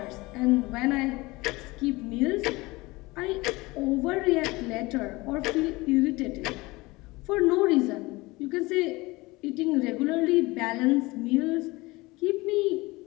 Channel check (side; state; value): right; quieter; 22.2 dB